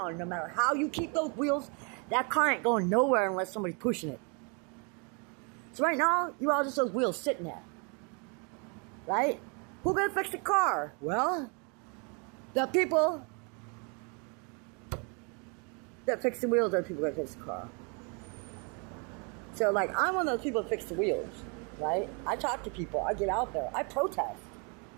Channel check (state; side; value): quieter; left; 35.0 dB